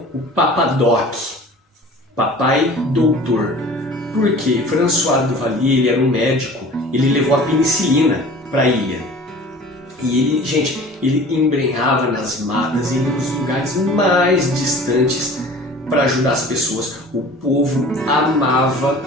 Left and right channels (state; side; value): normal; both; correlation 0.44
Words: o Papa Doc, Papai Doutor. Por quê? François Duvalier, ele era um médico, ele levou a penicilina para a ilha. E ele, gente, ele embrenhava nas matas, ia nos lugares mais distantes para ajudar as pessoas. O povo amava